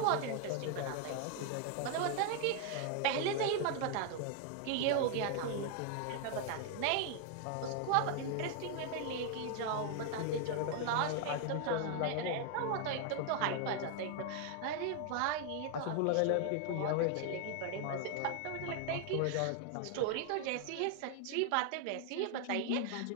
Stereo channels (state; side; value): different; both; correlation 0.00